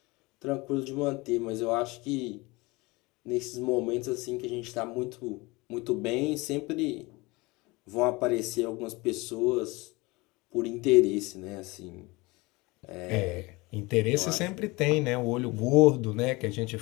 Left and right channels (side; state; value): right; quieter; 23.8 dB